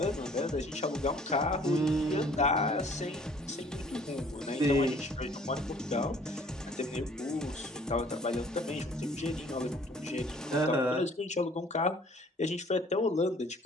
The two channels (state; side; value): normal; both; correlation 0.55